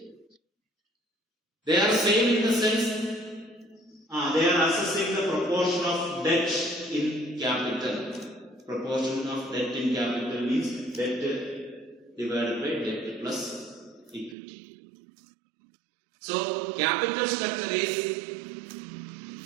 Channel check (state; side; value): drops out; left; at 14.4 s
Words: They are same in the sense they are assessing the proportion of debt in capital. Proportion of debt in capital means debt divided by debt plus equity. So capital structure is